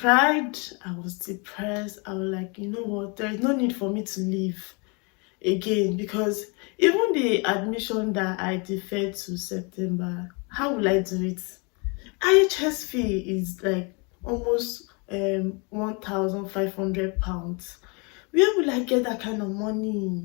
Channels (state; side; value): quieter; right; 32.1 dB